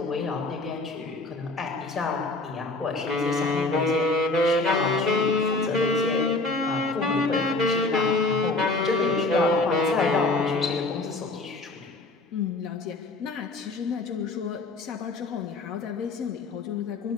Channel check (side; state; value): right; quieter; 3.1 dB